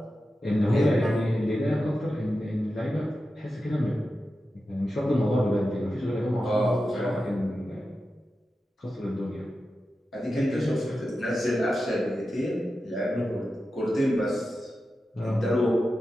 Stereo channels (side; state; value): both; normal; correlation 0.91